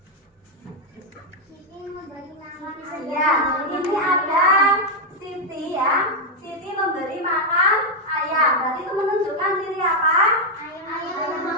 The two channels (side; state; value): both; normal; correlation 0.01